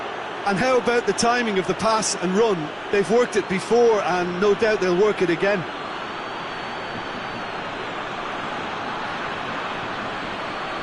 And how about the timing of the pass and run? They've worked it before, and no doubt they'll work it again.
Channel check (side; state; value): both; identical; correlation 1.00